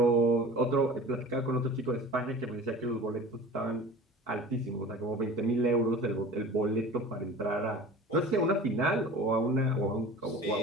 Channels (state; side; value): normal; both; correlation 0.39